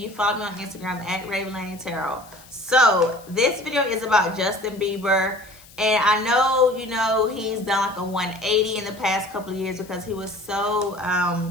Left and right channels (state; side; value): noise; left; hiss, 23 dB below the sound